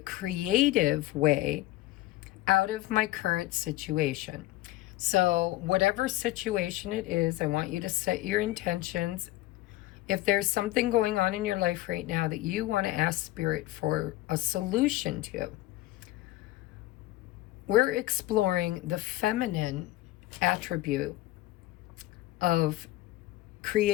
way out of my current situation? So whatever situation it is, I want you to set your intentions. If there's something going on in your life right now that you want to ask Spirit for a solution to, we're exploring the feminine attribute of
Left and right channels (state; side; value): quieter; right; 16.8 dB